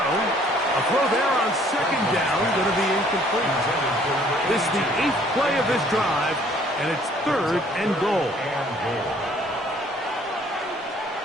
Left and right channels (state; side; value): normal; both; correlation 0.59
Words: A throw there on 2nd down, going to be incomplete. This is the 8th play of this drive. And it's 3rd and goal.